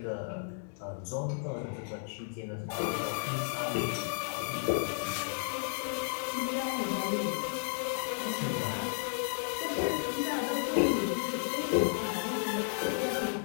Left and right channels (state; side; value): silent; right; 56 dB below the other